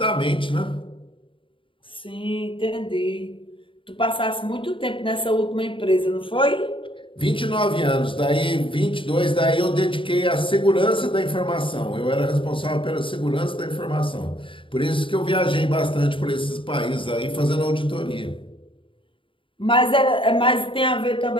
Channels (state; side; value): late; right; 0.25 ms